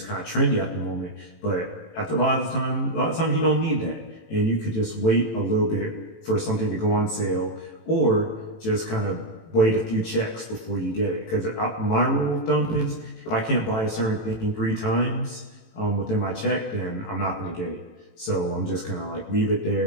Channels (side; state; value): right; late; 18 ms